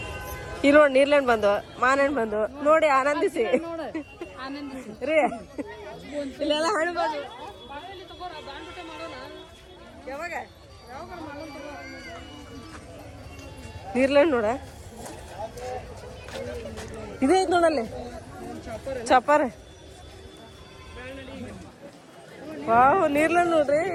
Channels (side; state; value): both; identical; correlation 1.00